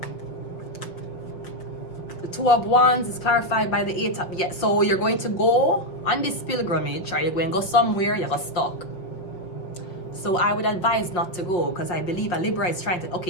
The Two of Wands is clarified by the Eight of... Yeah, so you're going to go on this pilgrimage, or you're going to go somewhere, you're stuck. So I would advise not to go, because I believe a Libra is trying to...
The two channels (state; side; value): late; right; 5.5 ms